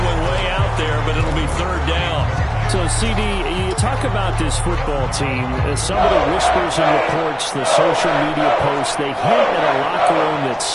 one way out there, but it'll be 3rd down. So, CD, you talk about this football team. Some of the whispers and reports, the social media posts, they hint at a locker room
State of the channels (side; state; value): both; identical; correlation 1.00